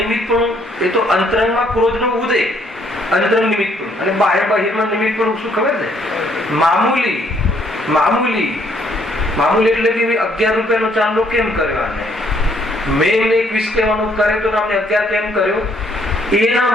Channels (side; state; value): both; normal; correlation 0.67